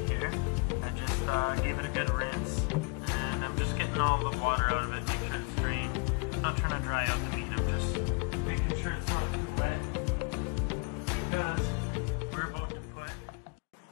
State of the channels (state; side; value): quieter; right; 33.8 dB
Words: here. I just gave it a good rinse. And I'm just getting all the water out of it, make sure it's drained. I'm not trying to dry out the meat, I'm just making sure it's not too wet. Because we're about to put